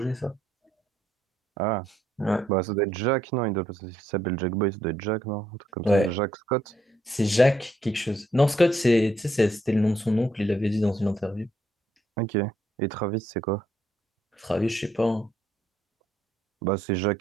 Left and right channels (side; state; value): both; normal; correlation 0.72